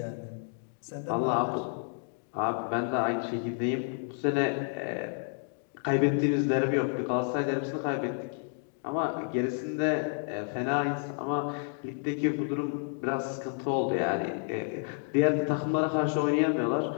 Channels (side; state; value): right; silent; 58 dB below the other